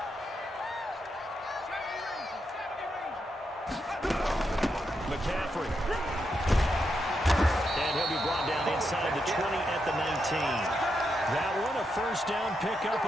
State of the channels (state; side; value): normal; both; correlation 0.83